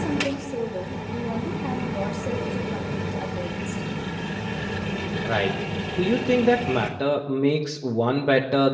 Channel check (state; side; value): identical; both; correlation 1.00